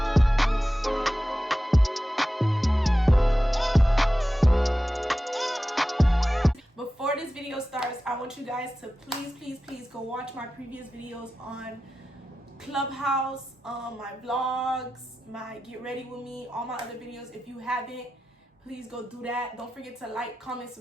Before this video starts, I want you guys to please go watch my previous videos on Clubhouse, my vlogs, my get ready with me, all my other videos. If you haven't, please go do that. Don't forget to like, comment,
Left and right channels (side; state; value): both; normal; correlation 0.93